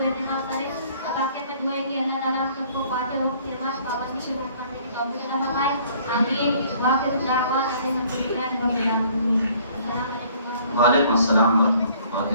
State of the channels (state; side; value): inverted; both; correlation -0.57